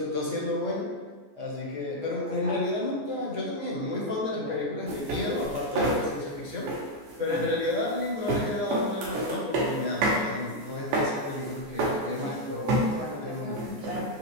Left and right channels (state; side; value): late; left; 14 ms